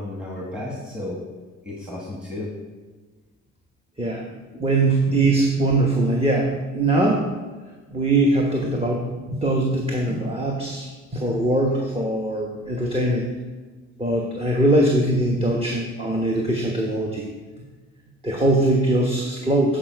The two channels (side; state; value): both; normal; correlation 0.44